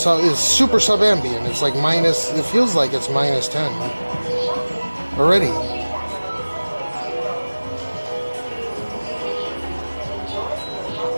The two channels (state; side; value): inverted; both; correlation -1.00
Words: super sub-ambient. It's like minus, it feels like it's minus 10 already.